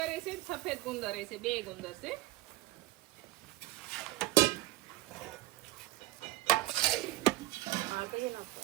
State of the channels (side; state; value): left; quieter; 17.8 dB